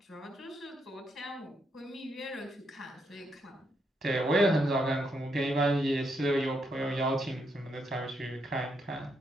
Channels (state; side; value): normal; both; correlation 0.78